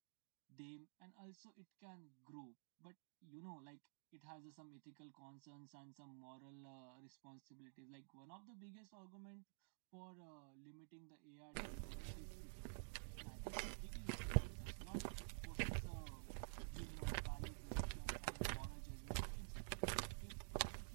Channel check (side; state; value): left; silent; digital silence